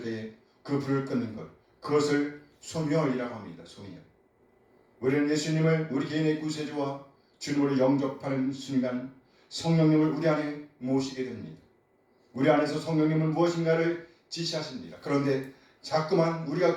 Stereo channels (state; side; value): identical; both; correlation 1.00